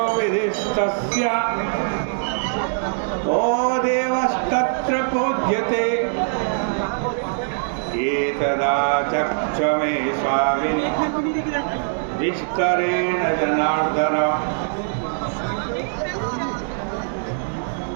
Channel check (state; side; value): silent; left; digital silence